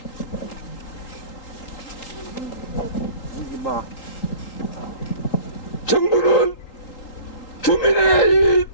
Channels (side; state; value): right; late; 3.8 ms